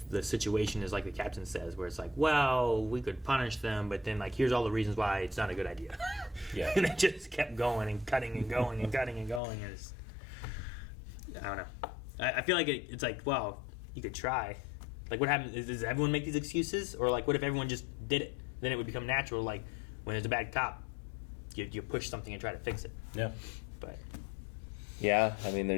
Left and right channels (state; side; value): drops out; right; at 9.4 s